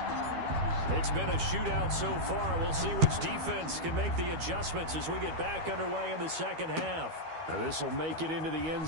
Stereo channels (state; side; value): late; left; 12 ms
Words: It's been a shootout so far. We'll see which defense can make the adjustments as we get back underway in the second half. Now this will make it into the end